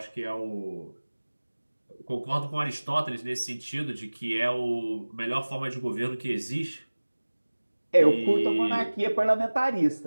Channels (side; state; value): both; inverted; correlation -1.00